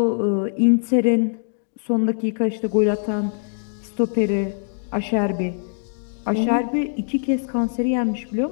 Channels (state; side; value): silent; right; digital silence